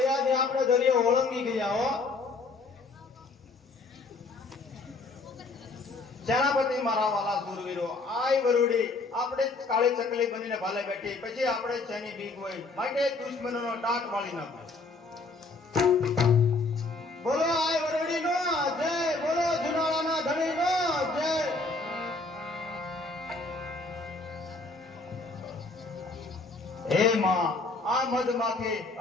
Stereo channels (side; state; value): right; quieter; 3.6 dB